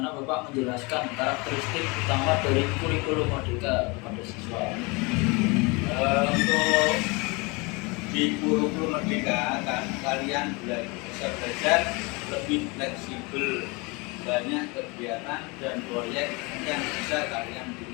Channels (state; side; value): quieter; right; 27.6 dB